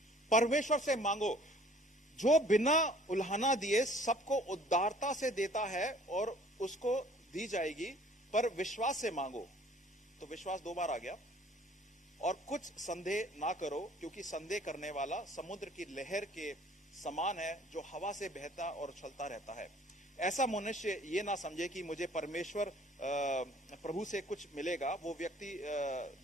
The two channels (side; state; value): both; normal; correlation 0.55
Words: परमेश्वर से मांगो, जो बिना उल्हाना दिए सबको उदारता से देता है और उसको दी जाएगी, पर विश्वास से मांगो। तो विश्वास 2 बार आ गया। और कुछ संदेह ना करो, क्योंकि संदेह करने वाला समुद्र की लहर के समान है, जो हवा से बहता और उछलता रहता है। ऐसा मनुष्य ये ना समझे कि मुझे परमेश्वर प्रभु से कुछ मिलेगा। वो व्यक्ति